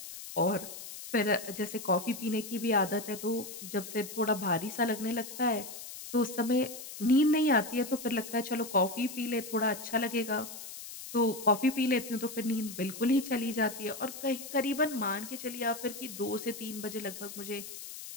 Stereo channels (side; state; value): left; noise; hiss, 11 dB below the sound